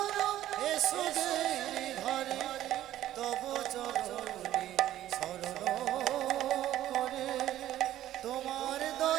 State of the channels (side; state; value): left; quieter; 13.2 dB